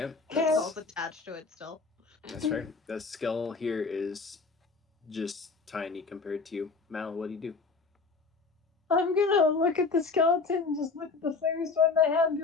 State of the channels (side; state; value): right; quieter; 4.3 dB